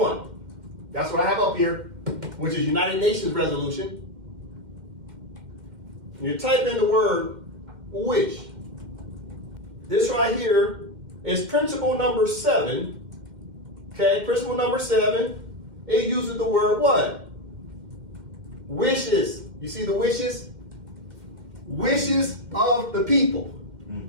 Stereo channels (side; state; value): left; late; 2.1 ms